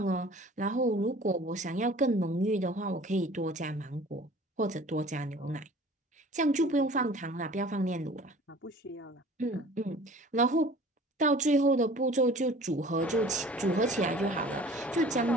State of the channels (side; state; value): both; normal; correlation 0.46